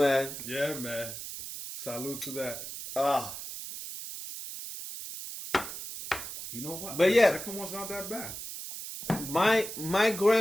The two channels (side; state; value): right; noise; hiss, 9 dB below the sound